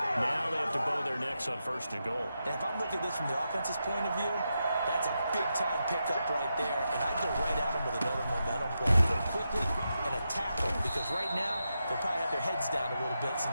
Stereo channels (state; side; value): inverted; both; correlation -0.87